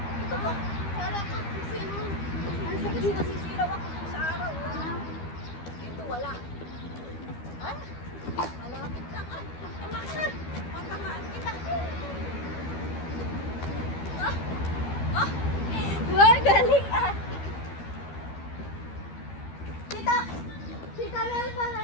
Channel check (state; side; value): late; right; 12 ms